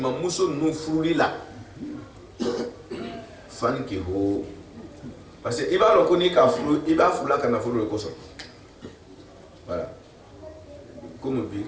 muso ninnu furuli la fankihu parce que i b'a dɔn ko n'i ka furu i b'a furula ka nafolo de kosɔn voilà komi bi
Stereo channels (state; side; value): identical; both; correlation 1.00